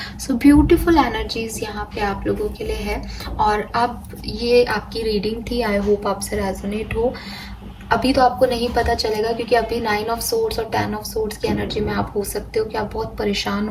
सो ब्यूटीफुल एनर्जीज यहाँ पे आप लोगों के लिए है। और अब ये आपकी रीडिंग थी, आई होप आपसे रेजोनेट हो। अभी तो आपको नहीं पता चलेगा क्योंकि अभी 9 ऑफ सोर्ड्स और 10 ऑफ सोर्ड्स की एनर्जी में आप हो सकते हो कि आप बहुत परेशान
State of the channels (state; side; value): identical; both; correlation 1.00